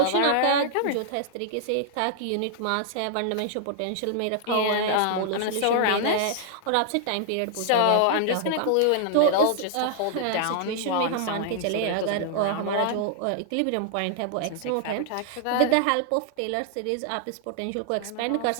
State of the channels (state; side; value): different; both; correlation -0.01